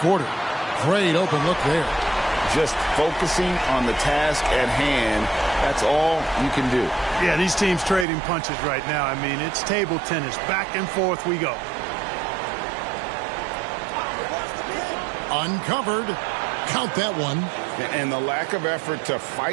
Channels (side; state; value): left; drops out; at 8.1 s